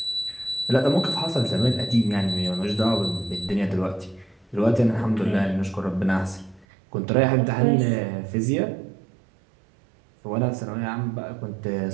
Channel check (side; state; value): left; drops out; at 6.7 s